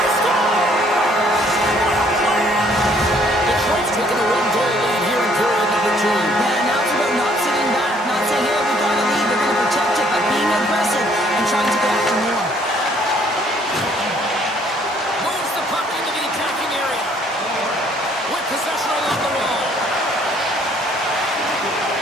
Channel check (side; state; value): both; normal; correlation 0.62